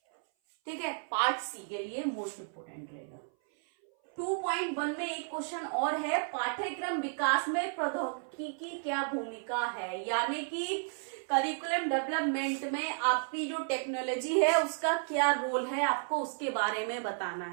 ठीक है। पार्ट सी के लिए मोस्ट इंपोर्टेंट रहेगा। 2.1 में एक क्वेश्चन और है, पाठ्यक्रम विकास में प्रौद्योगिकी की क्या भूमिका है, यानी कि करिकुलम डेवलपमेंट में आपकी जो टेक्नोलॉजी है उसका क्या रोल है, आपको उसके बारे में बताना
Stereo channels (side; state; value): left; silent; 56 dB below the other